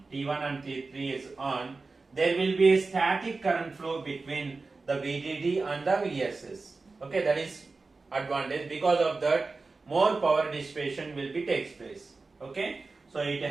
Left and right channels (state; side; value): quieter; left; 3.9 dB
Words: on, there will be a static current flow between the VDD and the VSS. Okay, that is advantage. Because of that, more power dissipation will be takes place. Okay, so it